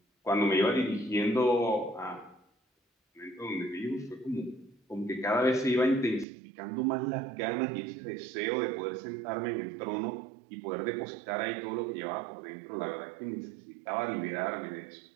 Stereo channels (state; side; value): drops out; left; at 6.2 s